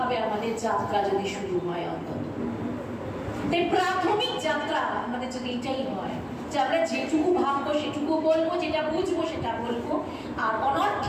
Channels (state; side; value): identical; both; correlation 1.00